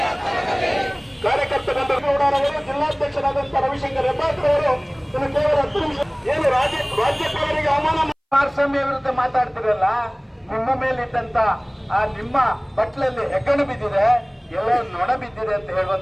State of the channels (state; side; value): identical; both; correlation 1.00